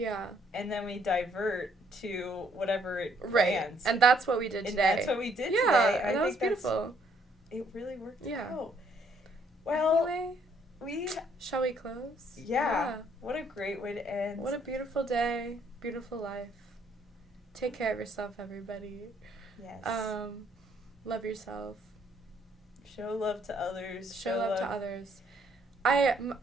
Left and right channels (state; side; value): normal; both; correlation 0.67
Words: And then we divert to whatever it lands. Right. And that's what we did today. That's what we did today. Yeah, and that was beautiful. It really worked out. Well, anyway, shall we close? Yeah. What a great way to end. What a beautiful day. Beautiful life. Take care of yourself, everybody. Yes. Love yourself. Show love to others. Show love to others. I